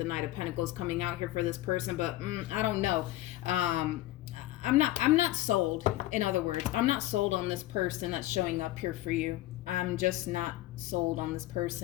Knight of Pentacles coming out here for this person. But I don't know. I'm not sold. In other words, I'm not sold on this person that's showing up here for you. I'm just not sold on this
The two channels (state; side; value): quieter; right; 16.1 dB